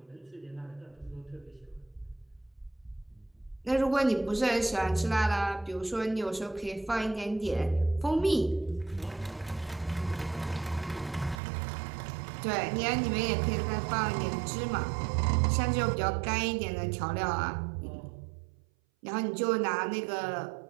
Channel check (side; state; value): left; drops out; at 11.4 s